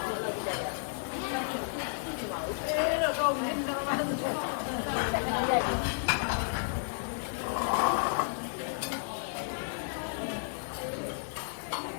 တော့မင်းတို့ဘာလို့ဆက်နေရလဲ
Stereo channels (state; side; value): silent; right; digital silence